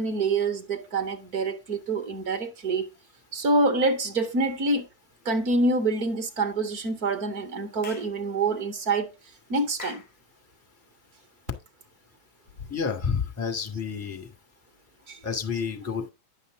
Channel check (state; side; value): late; left; 4.4 ms